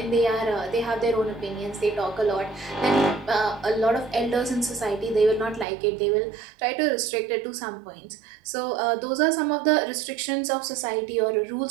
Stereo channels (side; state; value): left; drops out; at 5.7 s